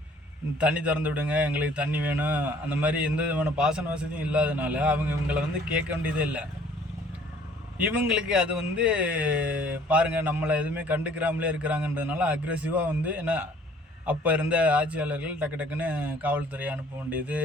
தண்ணி திறந்து விடுங்க, எங்களுக்கு தண்ணி வேணும், அந்த மாதிரி எந்த விதமான பாசன வசதியும் இல்லாதனால இவங்களை வந்து கேட்க வேண்டியதே இல்லை. இவங்களுக்கு அது வந்து பாருங்கள் நம்மளை எதுவுமே கண்டுக்கிறாமலே இருக்கிறாங்கன்றதுனால அக்ரெசிவாக வந்து ஏன்னா அப்போ இருந்த ஆட்சியாளர்கள் டக்கு டக்குன்னு காவல்துறையை அனுப்ப வேண்டியது,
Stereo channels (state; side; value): normal; both; correlation 0.56